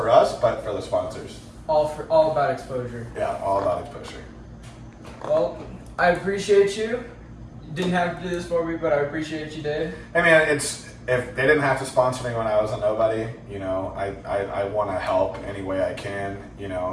us, but for the sponsors. All about exposure. Yeah, all about exposure. Well, I appreciate you. You didn't have to do this for me, but I appreciate you did. I mean, if they didn't have to sponsor me when I was a nobody, you know, I want to help any way I can, you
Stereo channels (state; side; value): identical; both; correlation 1.00